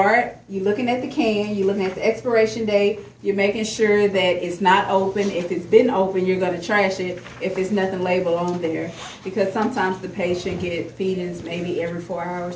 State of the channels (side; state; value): both; identical; correlation 1.00